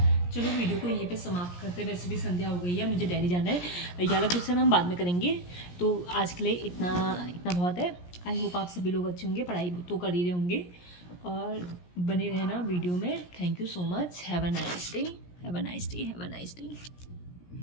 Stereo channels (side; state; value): right; late; 17 ms